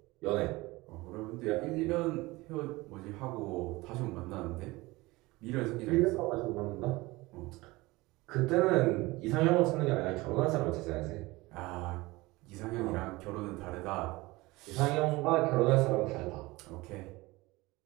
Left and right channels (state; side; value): quieter; left; 21.3 dB